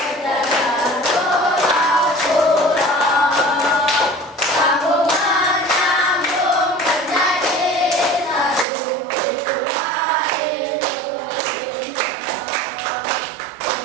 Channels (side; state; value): left; drops out; at 8.7 s